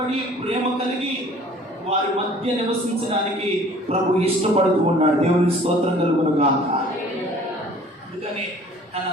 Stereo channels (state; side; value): normal; both; correlation 0.51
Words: ప్రేమ కలిగి వారి మధ్య నివసించడానికి ప్రభు ఇష్టపడుతూ ఉన్నాడు. దేవుని స్తోత్రం కలుగును గాక. అందుకని తన